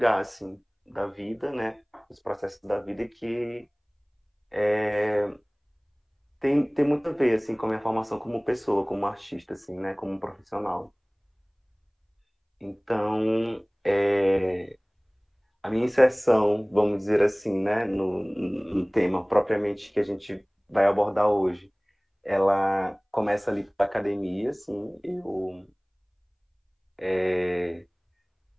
assim, da vida, né, os processos da vida que tem muito a ver assim, com a minha formação como pessoa, como artista, assim, né, como profissional. Então, a minha inserção, vamos dizer assim, né, no tema propriamente que a gente vai abordar hoje, ela começa ali pela academia, assim,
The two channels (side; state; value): both; identical; correlation 1.00